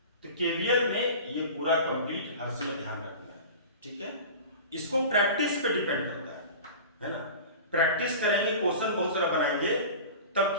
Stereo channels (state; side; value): inverted; both; correlation -0.35